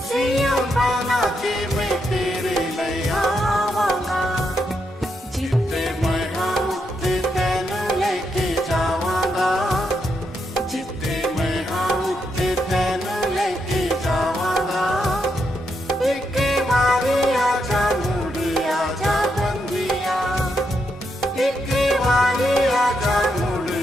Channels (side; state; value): both; normal; correlation 0.81